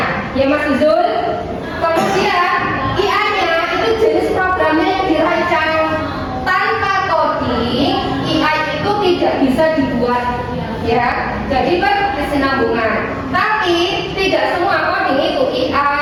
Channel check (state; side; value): identical; both; correlation 1.00